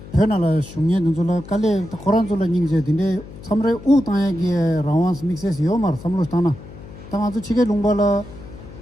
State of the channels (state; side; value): noise; left; hum, 16 dB below the sound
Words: 페나라 슝예 눈줄라 깔레 코란줄라 닝제 딘데 삼레 우 땅에게 라완스 믹스에서 요마르 삼로스타나 당 아주 치게 롱발라